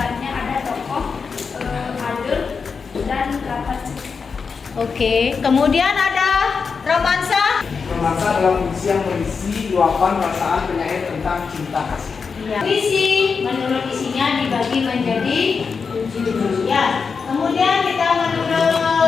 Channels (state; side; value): quieter; right; 5.4 dB